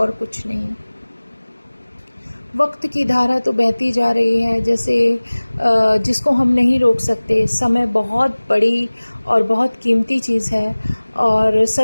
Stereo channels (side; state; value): both; inverted; correlation -1.00